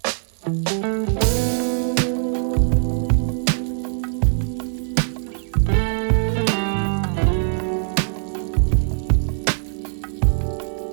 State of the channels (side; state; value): left; silent; 56 dB below the other